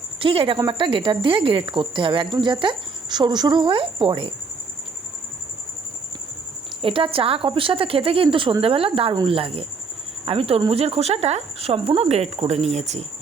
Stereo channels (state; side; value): quieter; left; 4.6 dB